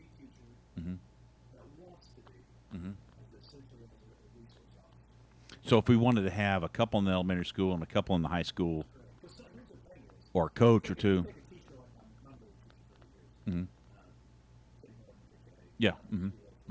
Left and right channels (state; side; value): identical; both; correlation 1.00